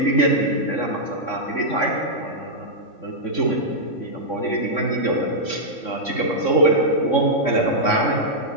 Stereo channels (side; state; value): right; late; 3.6 ms